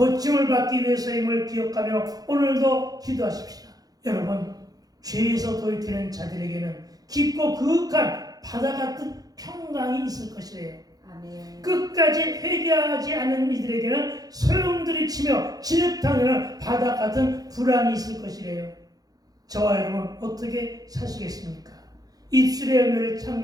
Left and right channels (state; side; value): late; left; 0.18 ms